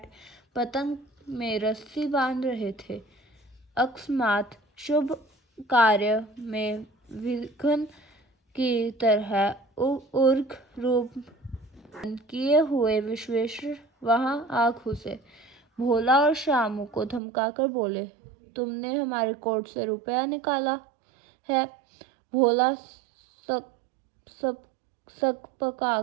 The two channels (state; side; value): drops out; left; at 17.2 s